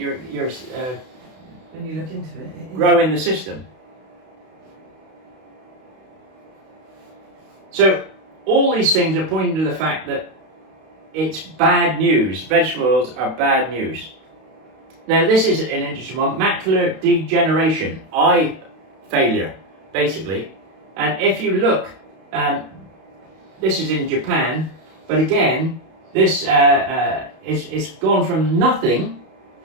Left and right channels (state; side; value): late; left; 32 ms